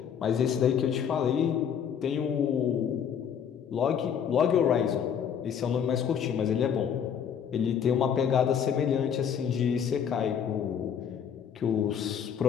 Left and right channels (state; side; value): quieter; right; 8.0 dB